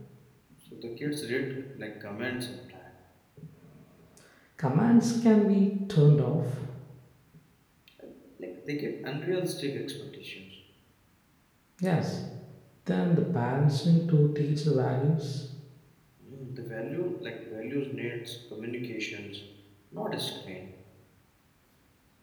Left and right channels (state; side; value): identical; both; correlation 1.00